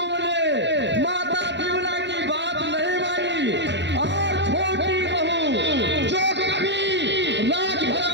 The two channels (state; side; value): late; left; 0.52 ms